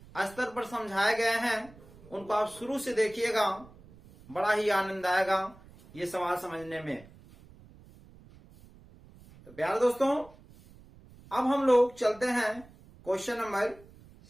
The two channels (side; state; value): right; noise; rumble, 23 dB below the sound